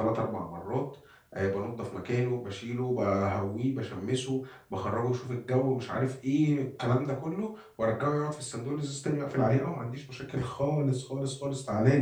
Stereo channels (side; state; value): both; identical; correlation 1.00